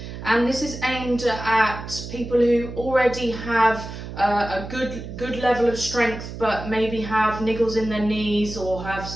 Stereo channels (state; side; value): noise; right; hum, 10 dB below the sound